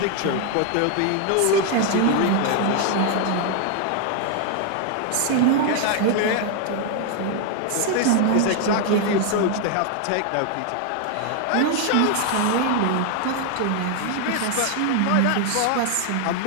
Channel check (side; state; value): both; different; correlation 0.00